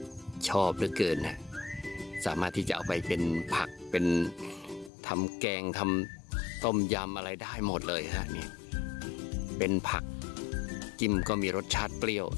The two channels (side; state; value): right; drops out; at 4.9 s